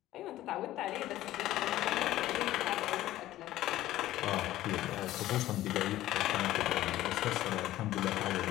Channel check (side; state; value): right; quieter; 14.7 dB